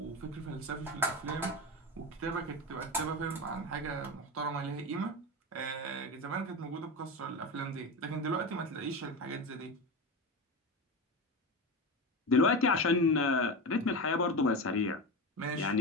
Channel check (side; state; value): both; normal; correlation 0.22